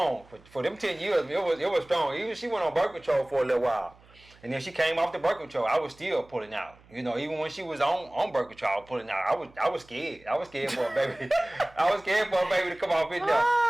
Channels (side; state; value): right; noise; hum, 27 dB below the sound